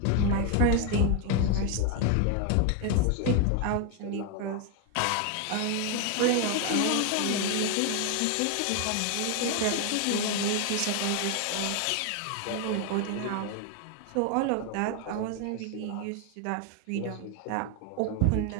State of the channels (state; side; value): different; both; correlation 0.01